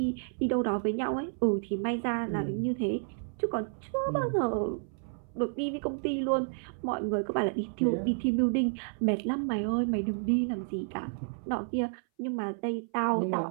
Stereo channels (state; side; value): silent; left; 57 dB below the other